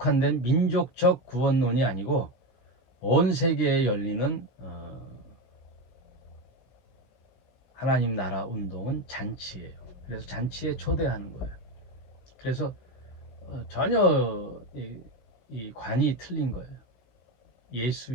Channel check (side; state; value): right; late; 16 ms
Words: 민족적 구원론이 아니고 온 세계에 열리는 하나님 나라 운동은 잔치예요. 그래서 잔치에 초대하는 거예요. 그래서 전혀 이 관이 틀린 거예요.